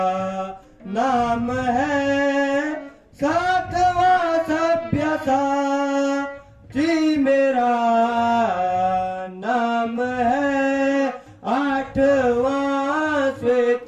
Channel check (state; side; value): identical; both; correlation 1.00